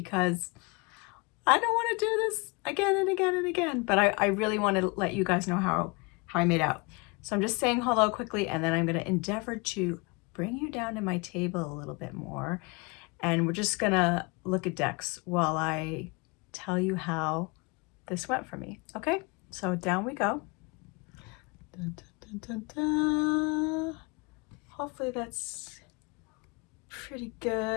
I don't want to do this again and again and again. But I really want to let you guys know how I made out. So I'm just saying hello quickly, and then I'm going to endeavor to bring you down to my table a little bit more. And we're just going to look at decks while I tell you how this went for me. Okay, so down we go. Dun, dun, dun, dun, dun. Hopefully that's pretty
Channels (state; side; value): quieter; right; 28.9 dB